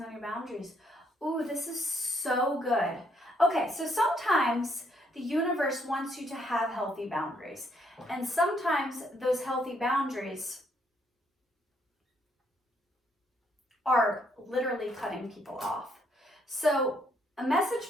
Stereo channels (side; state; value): both; normal; correlation 0.71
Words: on your boundaries. Ooh, this is so good. Okay, so sometimes the universe wants you to have healthy boundaries. And sometimes those healthy boundaries are literally cutting people off. So a message